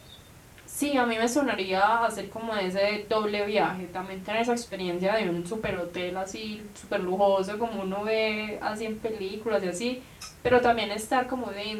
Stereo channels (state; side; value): identical; both; correlation 1.00